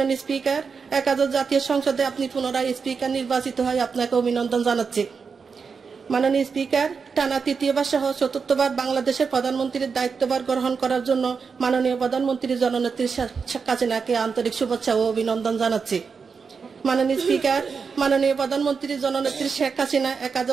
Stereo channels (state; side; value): quieter; left; 5.5 dB